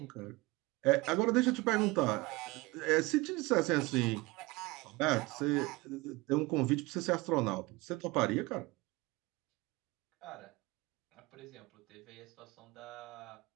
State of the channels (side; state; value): left; quieter; 22.6 dB